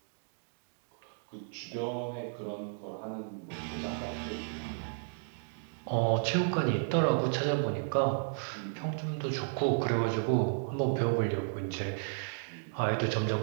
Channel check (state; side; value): silent; left; digital silence